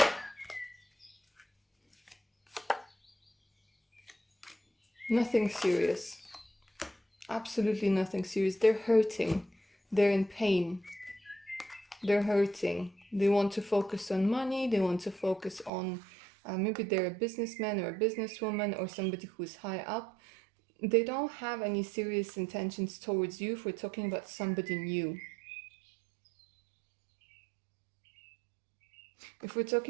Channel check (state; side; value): drops out; left; at 15.7 s